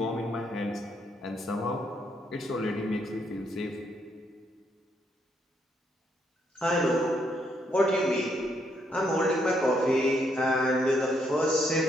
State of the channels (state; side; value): normal; both; correlation 0.74